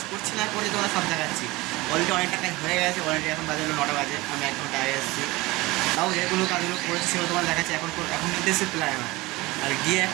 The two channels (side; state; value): left; quieter; 21.2 dB